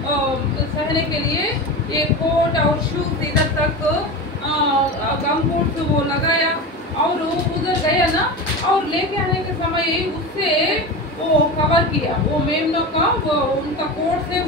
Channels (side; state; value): both; normal; correlation 0.26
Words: सहने के लिए ये कोट और शूज इधर तक गम बूट वो लगाया और उधर गया ना, और लेके आने के समय उससे वो कवर किया, वो मेमनों का वो उनका कोट से